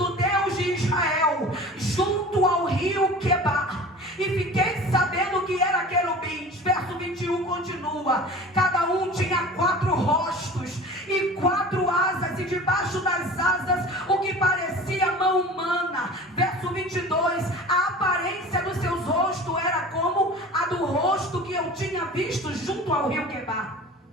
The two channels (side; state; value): both; normal; correlation 0.39